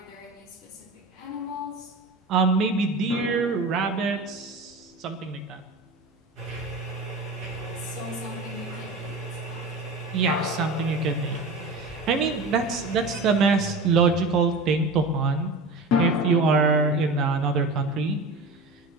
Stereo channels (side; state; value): left; quieter; 3.0 dB